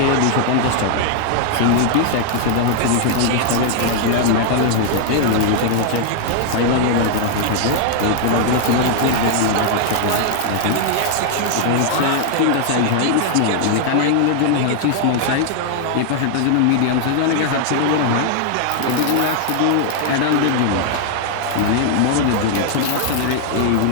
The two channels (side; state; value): both; different; correlation 0.00